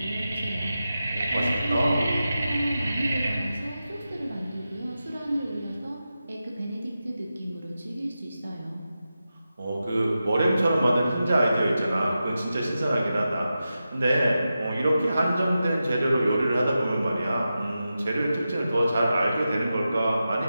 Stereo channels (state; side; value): inverted; both; correlation -0.91